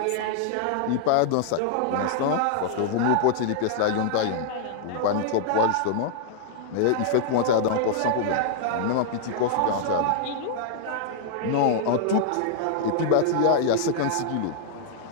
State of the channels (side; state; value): both; different; correlation -0.01